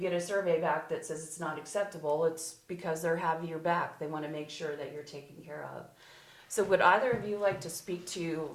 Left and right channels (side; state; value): both; identical; correlation 1.00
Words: a survey back that says it's not acceptable, it's because they're having your back. They want to make sure that you're taken care of. So would either of you like to speak to